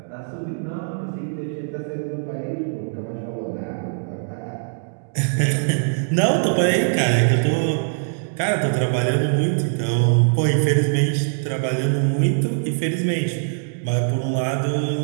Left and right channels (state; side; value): silent; left; digital silence